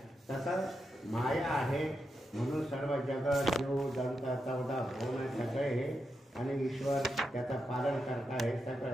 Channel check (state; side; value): normal; both; correlation 0.86